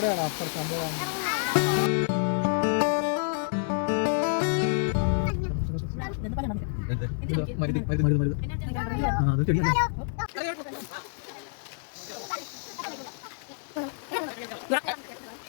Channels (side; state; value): right; silent; digital silence